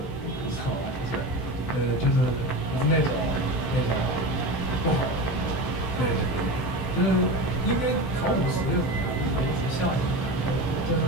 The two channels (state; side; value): late; right; 15 ms